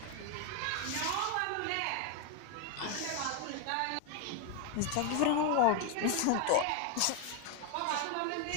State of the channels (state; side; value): different; both; correlation 0.01